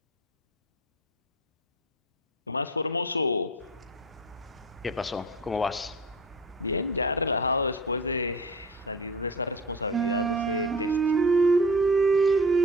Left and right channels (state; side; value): normal; both; correlation 0.35